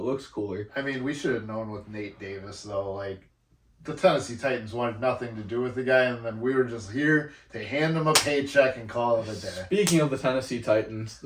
cooler. I mean, we should have known with Nate Davis, though. The Tennessee Titans wanted nothing to do with the guy, and then we were just here to hand him a paycheck and call it a day. Speaking of the Tennessee Titans,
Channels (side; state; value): both; identical; correlation 1.00